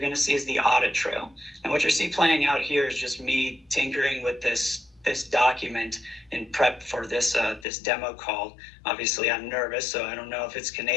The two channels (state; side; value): drops out; right; at 7.7 s